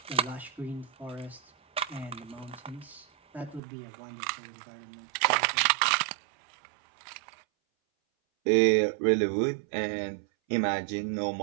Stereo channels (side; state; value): left; drops out; at 3.6 s